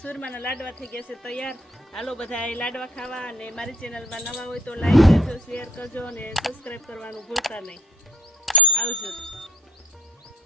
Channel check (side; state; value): both; normal; correlation 0.56